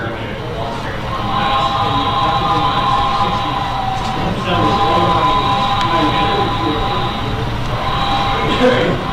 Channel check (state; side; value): identical; both; correlation 1.00